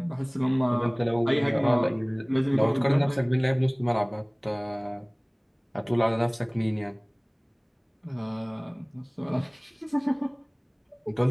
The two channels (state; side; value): identical; both; correlation 1.00